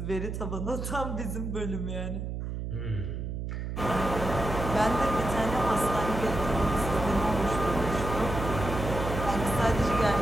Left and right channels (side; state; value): right; noise; hum, 5 dB below the sound